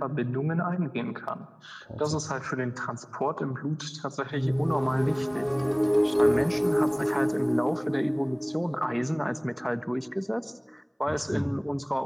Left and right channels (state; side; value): identical; both; correlation 1.00